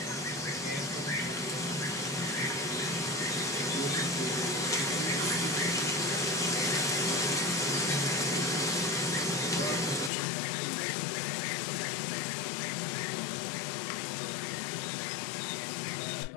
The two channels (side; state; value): right; drops out; at 10.1 s